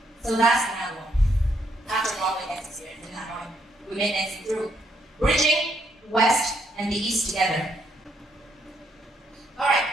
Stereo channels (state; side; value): normal; both; correlation 0.74